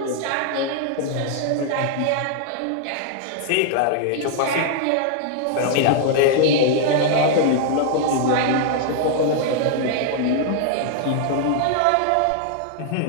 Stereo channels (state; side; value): different; both; correlation 0.00